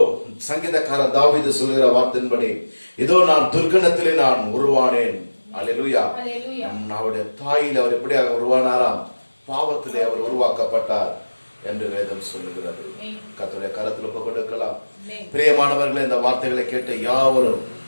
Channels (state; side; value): inverted; both; correlation -1.00